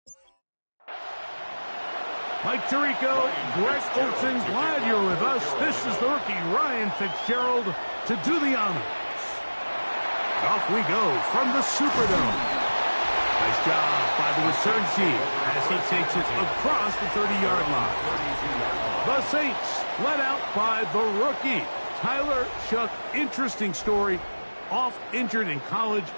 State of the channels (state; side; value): inverted; both; correlation -1.00